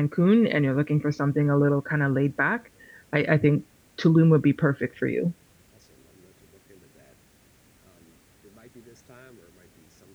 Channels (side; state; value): both; identical; correlation 1.00